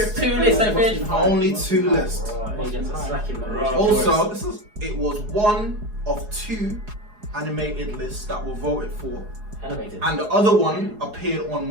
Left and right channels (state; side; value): late; left; 4.8 ms